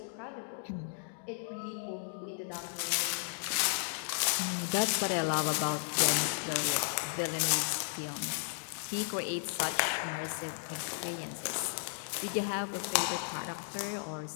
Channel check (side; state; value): right; silent; digital silence